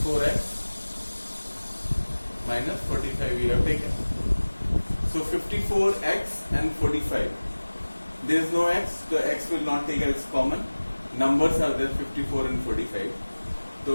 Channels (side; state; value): both; inverted; correlation -1.00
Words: minus 45 we have taken. So 54x and 45. There is no x, the x will not take as common. Numbers are there 54 and 45.